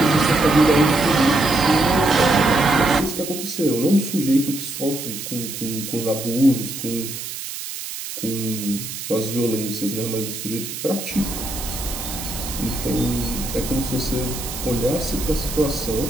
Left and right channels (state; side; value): noise; right; hiss, 8 dB below the sound